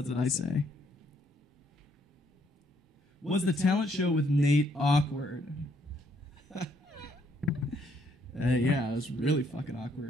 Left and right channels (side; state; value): both; normal; correlation 0.70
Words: what I say. Was the talent show with Nate awkward? Yeah, it was really fucking